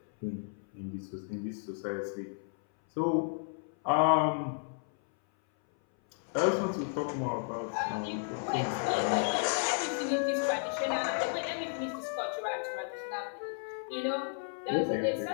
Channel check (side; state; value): right; silent; 56 dB below the other